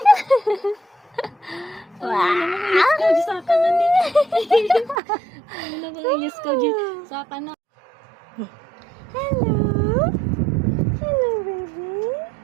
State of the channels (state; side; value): drops out; left; at 5.0 s